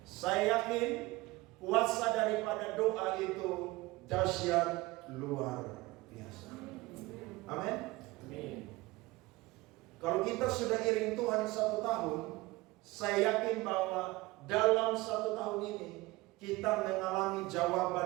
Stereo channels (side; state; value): left; quieter; 21.0 dB